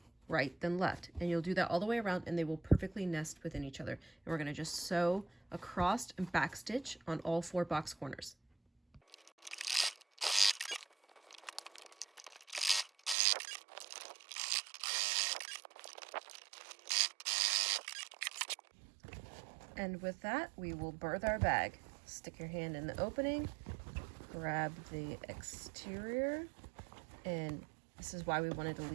right, then left, and you'll do that all the way around, and they will perfectly nest within each other. And we're going to just sew across and back stitch on all 4 box corners. And with that, we will birth our bag. Stick your hand in the opening, grab the exterior, and this is why we wanted to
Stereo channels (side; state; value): left; drops out; at 13.2 s